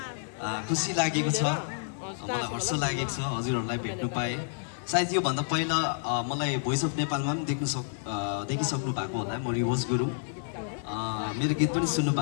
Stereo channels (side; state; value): right; silent; digital silence